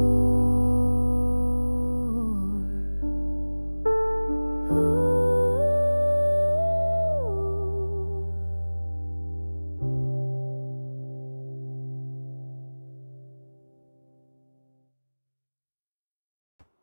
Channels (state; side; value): inverted; both; correlation -1.00